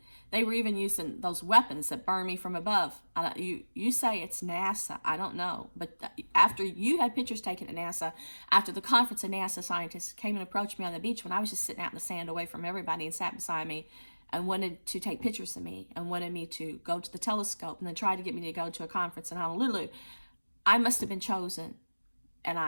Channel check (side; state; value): both; inverted; correlation -1.00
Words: they were even using those weapons that burn me from above. You say it's NASA. I don't know. But after you had pictures taken at NASA, after the conference, a NASA scientist came and approached me on the beach when I was just sitting out in the sand away from everybody and sat beside me and wanted to take pictures of me and wanted me to go to the telescope and then tried to get me to go to a conference in Honolulu. I must have been chosen.